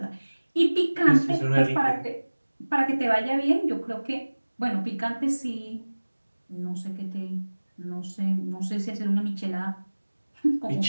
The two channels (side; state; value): both; inverted; correlation -1.00